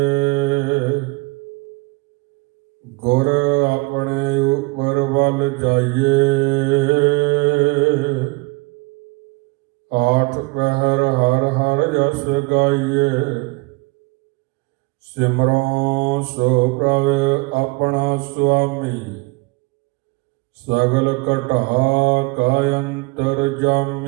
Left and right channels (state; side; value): quieter; left; 26.3 dB